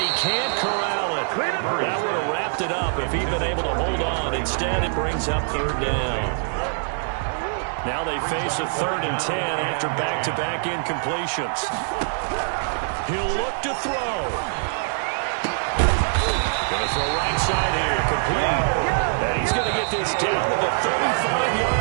can't corral it. That would have wrapped it up if he'd been able to hold on. Instead, it brings up third down. Now they face a 3rd and 10 after back-to-back incompletions. He'll look to throw. Going to throw right side here, complete. And he's going to get this down to the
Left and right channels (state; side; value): silent; left; digital silence